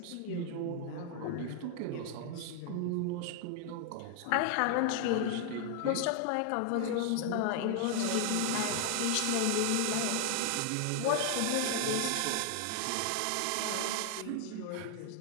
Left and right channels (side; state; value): both; different; correlation 0.00